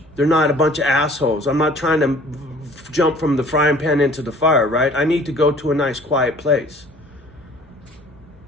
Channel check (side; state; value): both; normal; correlation 0.51